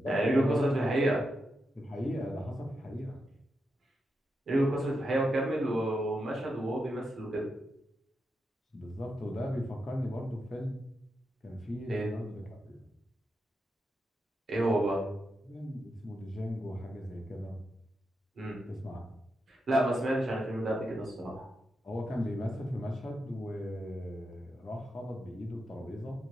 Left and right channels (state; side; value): normal; both; correlation 0.86